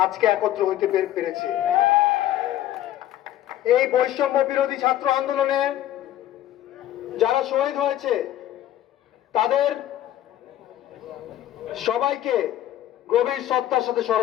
আজকে একত্র হইতে পেরেছি। এই বৈষম্য বিরোধী ছাত্র আন্দোলনে যারা শহীদ হয়েছে তাদের সবাইকে গভীর শ্রদ্ধার সাথে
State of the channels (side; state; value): right; quieter; 12.7 dB